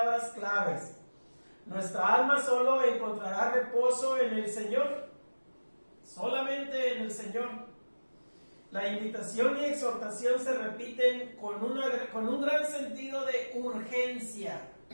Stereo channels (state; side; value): inverted; both; correlation -1.00